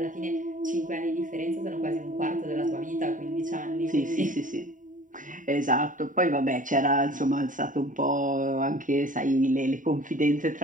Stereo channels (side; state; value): left; late; 0.38 ms